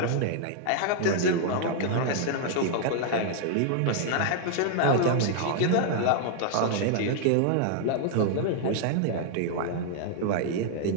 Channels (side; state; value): both; different; correlation 0.00